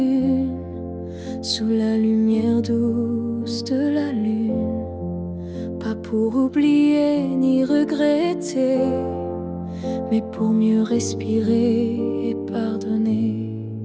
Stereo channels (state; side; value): identical; both; correlation 1.00